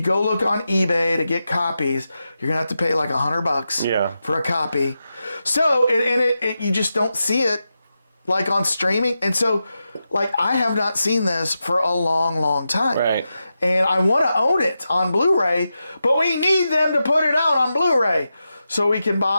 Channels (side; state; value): both; inverted; correlation -0.89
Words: look on eBay to get copies, you're gonna have to pay like $100 for a copy. So, you just don't see it like on streaming. And so, like, I have not seen this for a long, long time. Right. And I want to own it on Blu-ray, but we need them to put it out on Blu-ray so we can